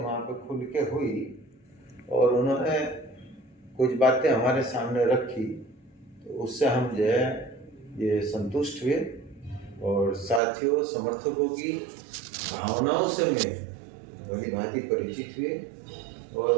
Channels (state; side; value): drops out; left; at 10.4 s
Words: पे खुल के हुई और उन्होंने कुछ बातें हमारे सामने रखी, तो उससे हम जो है ये संतुष्ट हुए और साथियों, समर्थकों की भावनाओं से मैं भली भांति परिचित हुए